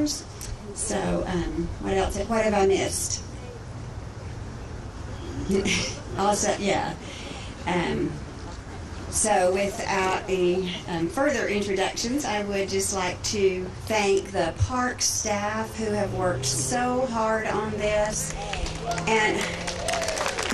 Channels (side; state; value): both; identical; correlation 1.00